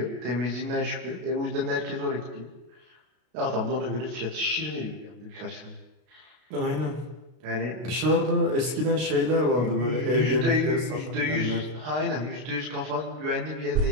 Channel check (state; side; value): late; left; 32 ms